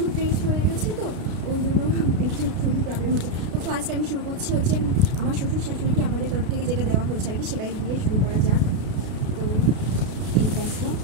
ড্রেস হয়ে গেছে, তো ওই জন্য একটু খুবই প্রবলেম হচ্ছে। তো ফার্স্ট আমি শুরু করছি হচ্ছে আমার শ্বশুর শাশুড়িকে আমাদের তরফ থেকে যেটা দেওয়া হয়েছে আর কি, সেটাই দিয়ে শুরু করা যাক। তো এই দেখো,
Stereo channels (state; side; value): late; left; 32 ms